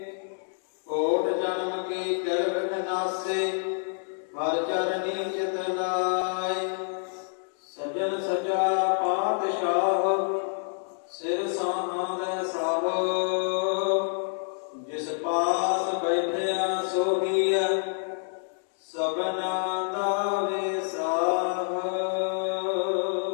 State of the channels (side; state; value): right; silent; digital silence